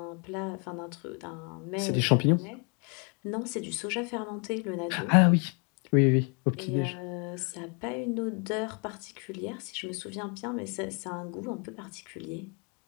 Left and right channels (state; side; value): quieter; right; 37.3 dB